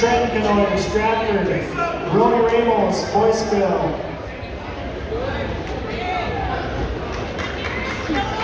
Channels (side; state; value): both; identical; correlation 1.00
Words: Canoyer, Stratford, Ronnie Ramos, Boyceville.